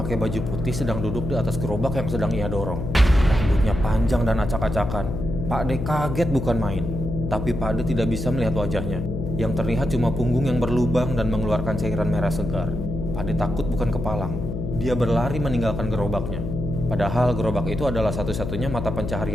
baju putih sedang duduk di atas gerobak yang sedang ia dorong. Rambutnya panjang dan acak-acakan. Pak Ade kaget bukan main. Tapi Pak Ade tidak bisa melihat wajahnya. Yang terlihat cuma punggung yang berlubang dan mengeluarkan cairan merah segar. Pak Ade takut bukan kepalang. Dia berlari meninggalkan gerobaknya. Padahal gerobak itu adalah satu-satunya mata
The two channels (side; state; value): left; noise; hum, 4 dB below the sound